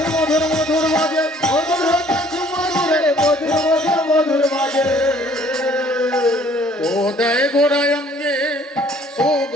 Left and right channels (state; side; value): normal; both; correlation 0.58